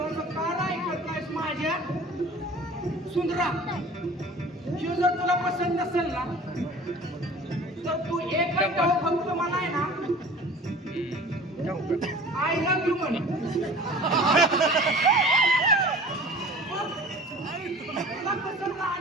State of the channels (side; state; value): both; normal; correlation 0.43